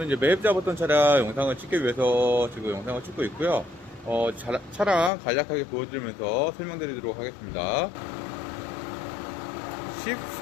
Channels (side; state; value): right; drops out; at 5.1 s